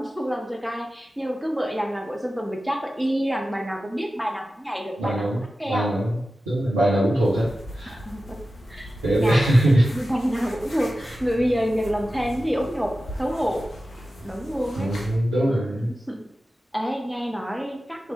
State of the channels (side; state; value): both; normal; correlation 0.94